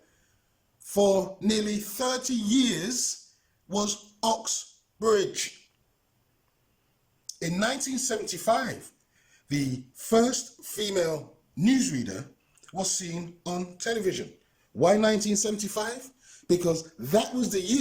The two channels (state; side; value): identical; both; correlation 1.00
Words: for nearly 30 years was Oxbridge. In 1975, the first female newsreader was seen on television. Why 1975? Because that was the